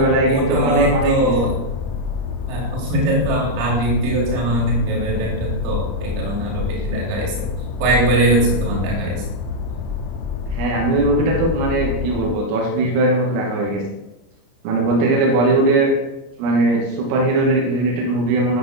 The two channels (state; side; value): late; left; 29 ms